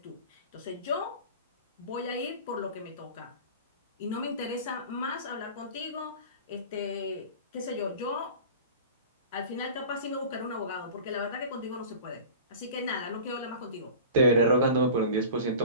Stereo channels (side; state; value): both; inverted; correlation -0.38